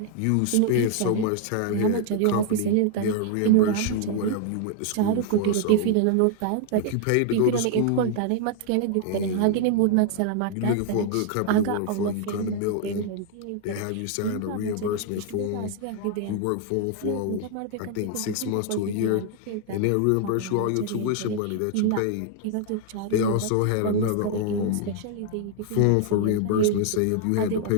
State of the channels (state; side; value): different; both; correlation 0.00